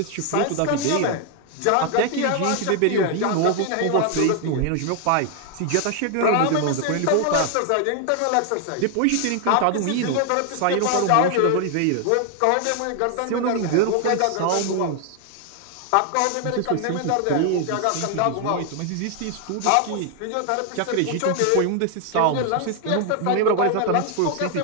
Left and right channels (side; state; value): both; different; correlation 0.00